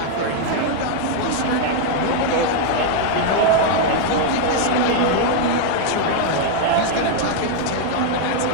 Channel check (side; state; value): both; different; correlation 0.00